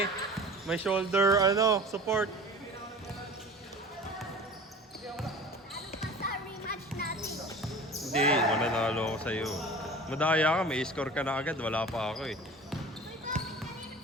may shoulder, support. Sa rematch natin. Hindi, mananalo ako sa'yo. Madaya ka, may score ka na agad, wala pa ako eh.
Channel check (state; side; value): normal; both; correlation 0.39